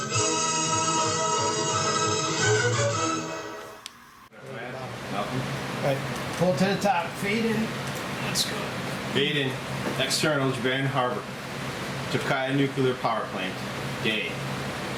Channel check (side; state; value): both; identical; correlation 1.00